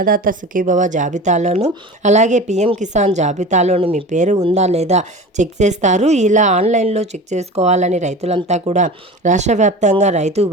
సుఖీభవ జాబితాలోను అలాగే పిఎం కిసాన్ జాబితాలోను మీ పేరు ఉందా లేదా చెక్ చేస్తారు. ఇలా ఆన్లైన్లో చెక్ చేసుకోవాలని రైతులంతా కూడా రాష్ట్ర వ్యాప్తంగా రైతు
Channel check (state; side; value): normal; both; correlation 0.34